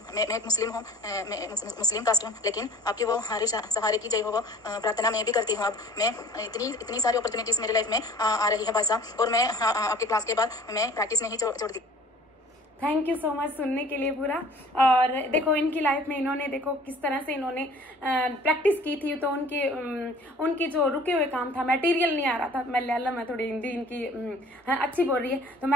मैं मुस्लिम हूँ, मैं मुस्लिम कास्ट हूँ, लेकिन आपकी वो हर सहारे की जय हो वो प्रार्थना मैं भी करती हूँ। अब मैं इतनी सारी अपॉर्चुनिटीज़ मेरी लाइफ में आ रही है भाई साहब, और मैं आपके क्लास के बाद मैं प्रैक्टिस नहीं छोड़ दी। थैंक यू सो मच सुनने के लिए पूरा। और देखो इनकी लाइफ में इन्होंने देखो किस तरह से इन्होंने प्रैक्टिस की थी, तो उनकी जो रुके हुए काम था, मटेरियल नहीं आ रहा था। मैं थोड़ी हिंदी इनकी अच्छी बोल रही है, तो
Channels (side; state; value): both; normal; correlation 0.49